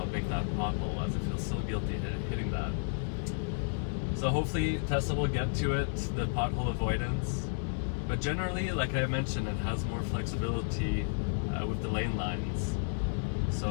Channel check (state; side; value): silent; right; digital silence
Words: big that pothole was. I feel so guilty hitting that. So hopefully Tesla will get to it, the pothole avoidance. But generally, like I mentioned, it has more flexibility with the lane lines.